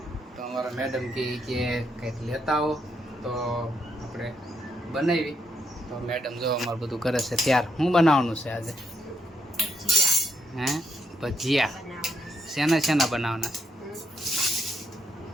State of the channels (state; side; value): normal; both; correlation 0.78